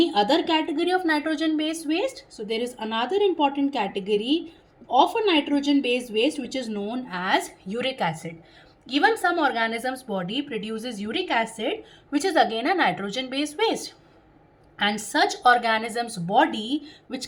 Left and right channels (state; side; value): identical; both; correlation 1.00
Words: other category of nitrogen based waste, so there is another important category of a nitrogen based waste which is known as uric acid. Even some organisms body produces uric acid, which is again a nitrogen based waste. And such organisms body